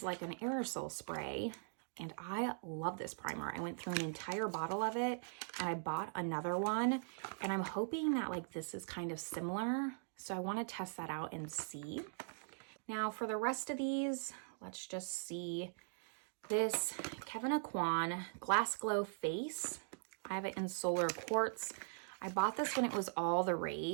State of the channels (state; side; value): silent; left; digital silence